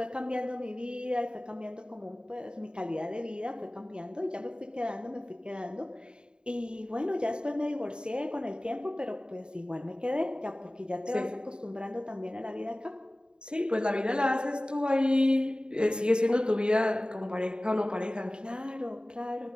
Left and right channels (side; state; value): left; late; 0.050 ms